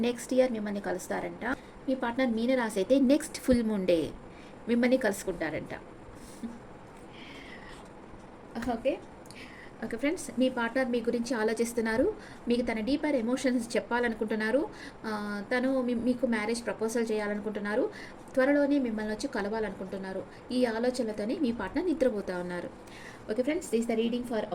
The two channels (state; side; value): identical; both; correlation 1.00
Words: నెక్స్ట్ ఇయర్ మిమ్మల్ని కలుస్తారంట. మీ పార్ట్నర్ మీనరాశి అయితే నెక్స్ట్ ఫుల్ మూన్ డే మిమ్మల్ని కలుసుకుంటారంట. ఓకే ఫ్రెండ్స్, మీ పార్ట్నర్ మీ గురించి ఆలోచిస్తున్నారు, మీకు తన డీపర్ ఎమోషన్స్ చెప్పాలనుకుంటున్నారు, తను మీకు మ్యారేజ్ ప్రపోజల్ చేయాలనుకుంటున్నారు, త్వరలోనే మిమ్మల్ని వచ్చి కలవాలనుకుంటున్నారు. ఈ ఆలోచనలతోనే మీ పార్ట్నర్ నిద్రపోతూ ఉన్నారు. Okay friends, this the reading for